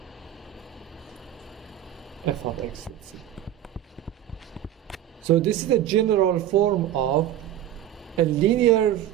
f of x. So this is the general form of a linear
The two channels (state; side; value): quieter; left; 11.8 dB